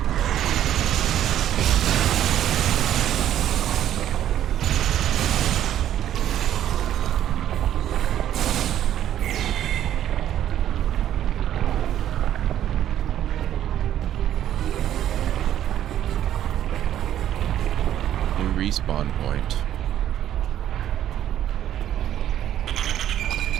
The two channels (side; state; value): left; quieter; 11.3 dB